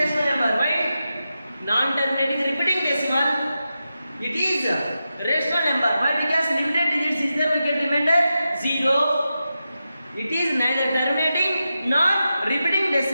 number. Why? Non-terminating repeating decimal. It is rational number. Why? Because limited digits is there, we get remainder 0. It is neither terminating nor repeating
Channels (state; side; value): inverted; both; correlation -0.90